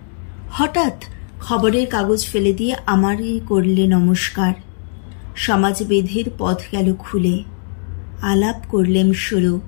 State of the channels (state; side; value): silent; right; digital silence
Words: হঠাৎ খবরের কাগজ ফেলে দিয়ে আমারই করলে নমস্কার। সমাজবিধির পথ গেল খুলে, আলাপ করলেম শুরু।